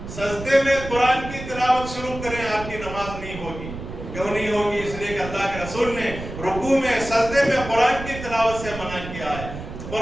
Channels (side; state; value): right; noise; rumble, 10 dB below the sound